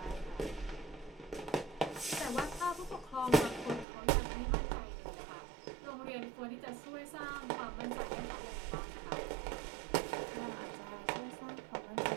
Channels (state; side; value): drops out; left; at 3.9 s